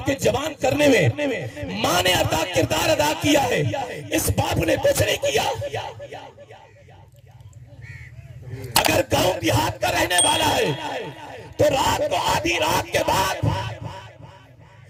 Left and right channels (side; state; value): both; identical; correlation 1.00